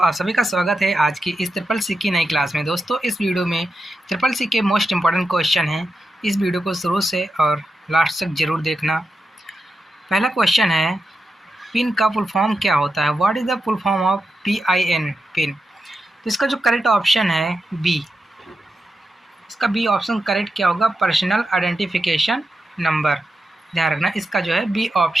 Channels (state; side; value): normal; both; correlation 0.88